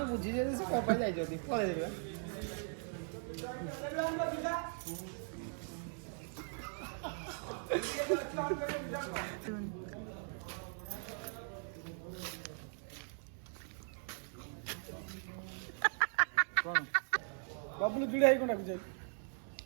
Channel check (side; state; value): left; silent; 51 dB below the other